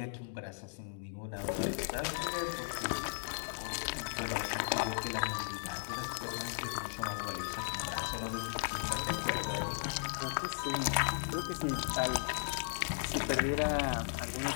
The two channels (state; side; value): silent; right; digital silence